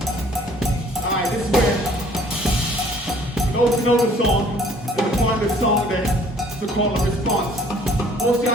Alright, this is where those who know the song, gonna find the song that's the call and response. Most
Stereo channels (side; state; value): both; normal; correlation 0.57